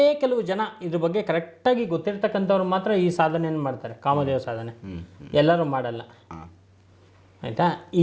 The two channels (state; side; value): identical; both; correlation 1.00